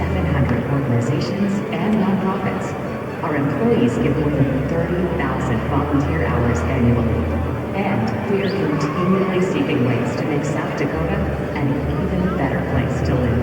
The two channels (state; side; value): identical; both; correlation 1.00